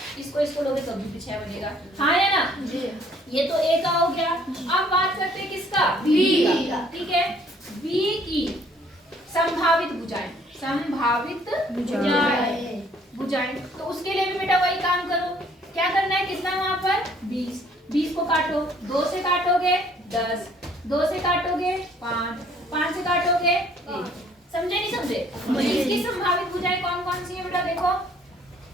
इसको लोगे तो भी 6 बनेगा। हाँ या ना? ये तो A का हो गया। अब बात करते हैं किसका? B का। ठीक है, B की संभावित भुजाएं। संभावित भुजाएं तो उसके लिए भी बेटा वही काम करो। क्या करना है? कितना वहां पर? 20। 20 को काटो, 2 से काटोगे 10, 2 से काटोगे 5, 5 से काटोगे 1। समझे नहीं समझे? इसकी संभावित भुजाएं कौन कौन सी है बेटा? देखो,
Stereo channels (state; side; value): normal; both; correlation 0.60